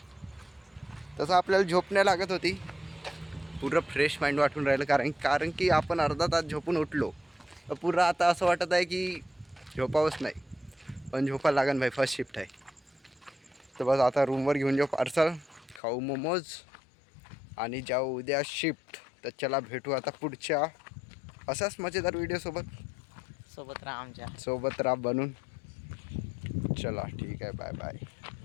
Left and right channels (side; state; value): right; drops out; at 15.8 s